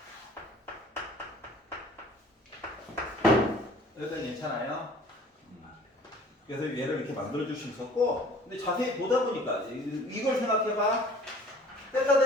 여기까지 괜찮아요? 그래서 얘를 이렇게 만들어줄 수 있었고, 근데 자세히 보다 보니까 이걸 생각해봐. 세타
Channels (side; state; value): both; normal; correlation 0.49